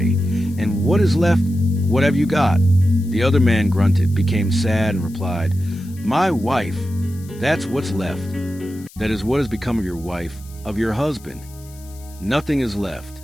and what is left? What have you got?" The other man grunted, became sad, and replied, "My wife, that's what's left. That is what has become of your wife, of your husband. Nothing is left,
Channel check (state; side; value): noise; left; hiss, 23 dB below the sound